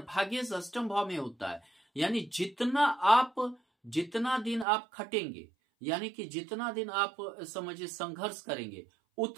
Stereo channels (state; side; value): drops out; left; at 4.7 s